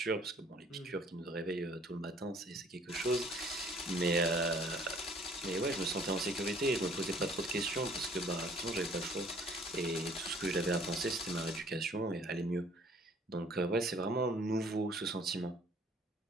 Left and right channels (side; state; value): both; normal; correlation 0.56